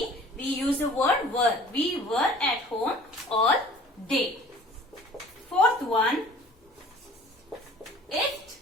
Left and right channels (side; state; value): both; normal; correlation 0.49